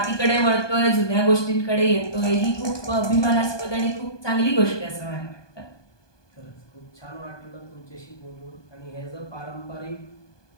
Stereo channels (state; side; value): late; right; 1.2 ms